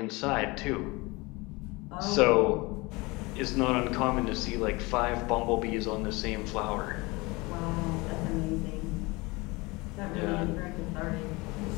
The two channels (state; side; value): quieter; right; 24.2 dB